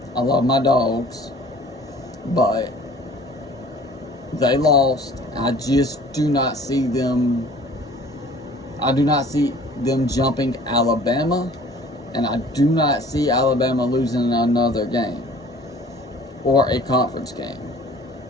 I love my dogs, but they lost. I just do not see them. I do not see them jumping Alabama, and I do not see Alabama losing another game or a conference game.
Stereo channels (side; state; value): both; normal; correlation 0.50